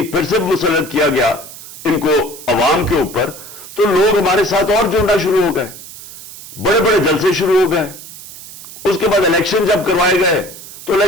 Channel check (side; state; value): right; noise; hiss, 15 dB below the sound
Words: پھر سے مسلط کیا گیا ان کو عوام کے اوپر، تو لوگ ہمارے ساتھ اور جڑنا شروع ہو گئے، بڑے بڑے جلسے شروع ہو گئے. اس کے بعد الیکشن جب کروائے گئے تو